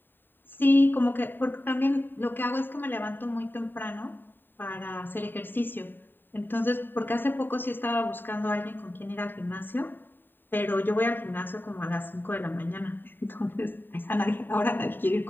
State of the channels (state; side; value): late; right; 0.094 ms